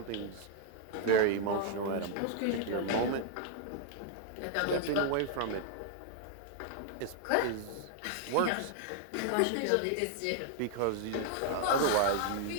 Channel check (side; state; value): both; different; correlation 0.00